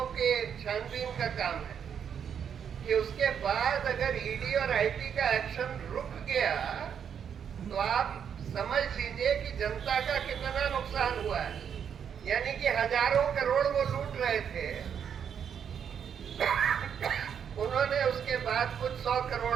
के छानबीन का काम है कि उसके बाद अगर ईडी और आईटी का एक्शन रुक गया, तो आप समझ लीजिए कि जनता का कितना नुकसान हुआ है। यानी कि हजारों करोड़ वो लूट रहे थे, उन्होंने उसके बाद कुछ 100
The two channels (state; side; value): quieter; left; 7.9 dB